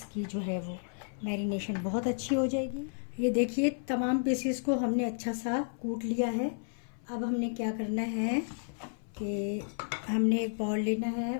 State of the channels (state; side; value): silent; right; 56 dB below the other